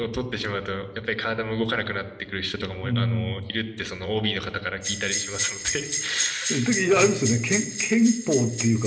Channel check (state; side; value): identical; both; correlation 1.00